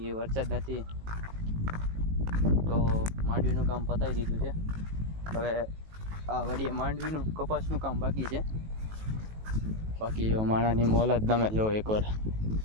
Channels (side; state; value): left; late; 18 ms